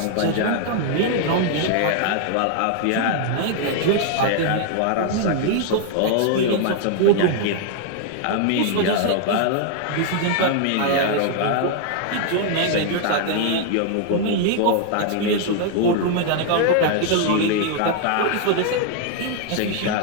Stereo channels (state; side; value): different; both; correlation 0.00